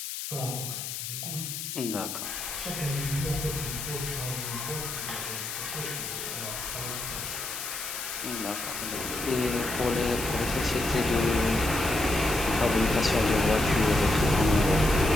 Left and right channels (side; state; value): left; noise; hiss, 6 dB below the sound